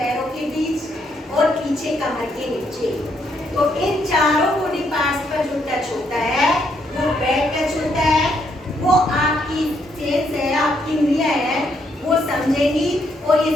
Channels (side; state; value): both; normal; correlation 0.74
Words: के बीच और पीछे कमर के नीचे। तो इन चारों बॉडी पार्ट्स पर जो टच होता है वो बैड टच होता है। वो आपकी सेंस है, आपकी इंद्रियां है, वो समझेगी और ये